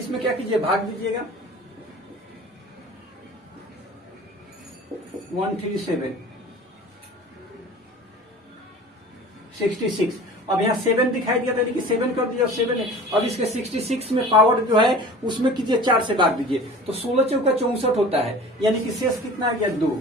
में क्या कीजिए, भाग दीजिएगा 137 66। अब यहाँ 7 दिखाई दिया था, कि 7 कर दिया, 7 है। अब इसके 66 में पावर जो है उसमें कीजिए 4 से भाग दीजिए, तो 16 चौका 64 होता है, यानी कि शेष कितना आ गया 2।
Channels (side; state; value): both; normal; correlation 0.40